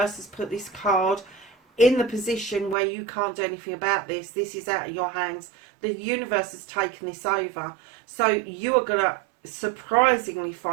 has put this card in the position where you can't do anything about this. This is out of your hands. The universe has taken this over. So you are going to surprisingly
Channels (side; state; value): left; drops out; at 2.8 s